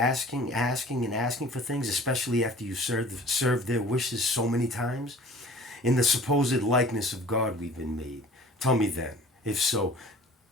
and asking for things, especially after you served their wishes so many times? In the supposed likeness of God we've been made. Tell me then, if so,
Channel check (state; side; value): normal; both; correlation 0.46